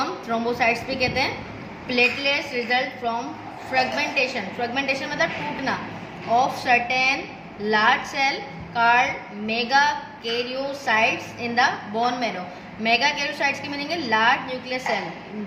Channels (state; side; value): identical; both; correlation 1.00